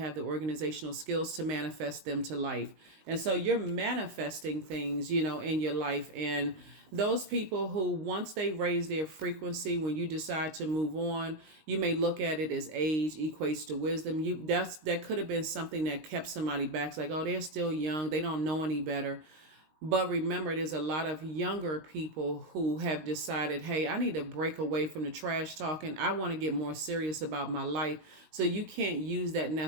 the organizational skills to manifest them to life. And so you're manifesting things, in your life. And those people who, once they raise their frequency, when you decide to move on, you may look at it as age equates to wisdom. That could have been something that kept somebody back. It's like, oh, they're still young. They don't know any better. But remember, there's a lot of younger people who have decided, hey, I need to break away from the trash talking. I want to get more serious about my life. So you can't use that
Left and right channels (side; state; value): left; late; 19 ms